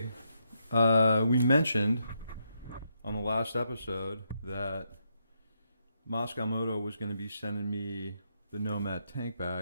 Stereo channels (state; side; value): inverted; both; correlation -0.79